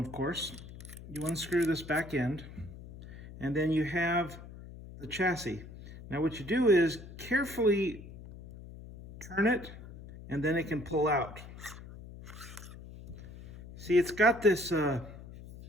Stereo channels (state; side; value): noise; left; hum, 15 dB below the sound